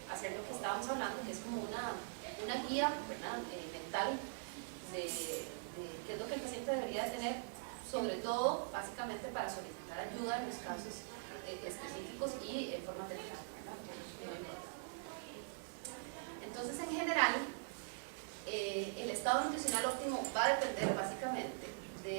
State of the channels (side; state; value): left; silent; digital silence